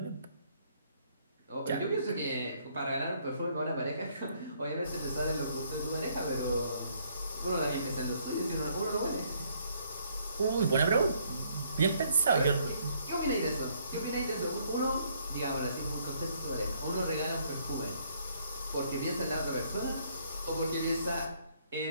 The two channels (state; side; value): inverted; both; correlation -0.67